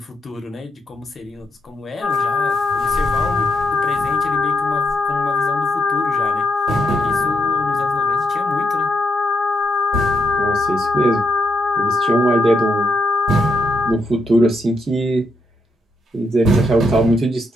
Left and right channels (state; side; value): normal; both; correlation 0.80